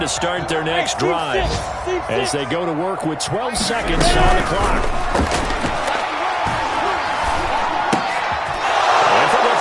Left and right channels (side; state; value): both; identical; correlation 1.00